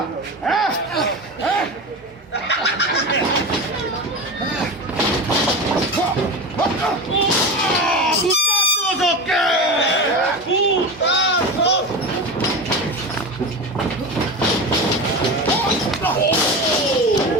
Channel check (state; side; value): normal; both; correlation 0.25